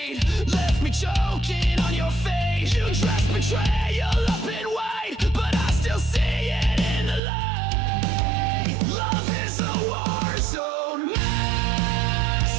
left me choking on your face. You dressed betrayal up in white, but I still see it in the light. Love is a war zone.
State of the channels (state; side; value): drops out; left; at 7.2 s